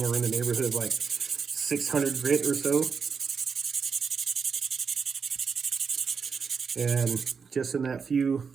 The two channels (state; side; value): quieter; left; 5.8 dB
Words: in the neighborhood of like 600 grit or so. And just in that few